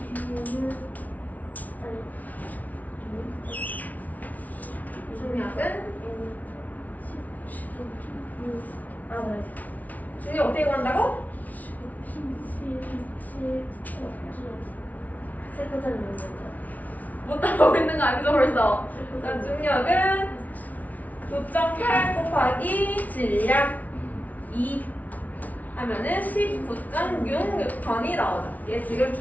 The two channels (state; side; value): late; right; 0.074 ms